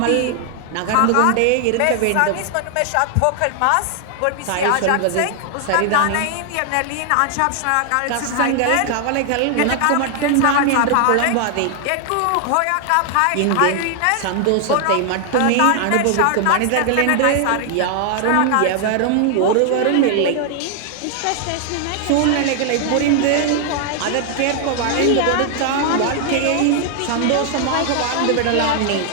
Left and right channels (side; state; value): both; different; correlation 0.00